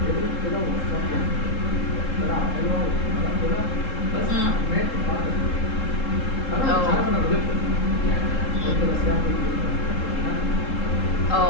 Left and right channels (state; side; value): late; right; 3.7 ms